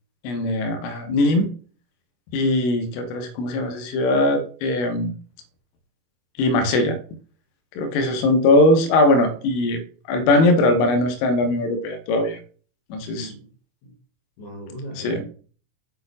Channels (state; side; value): late; right; 24 ms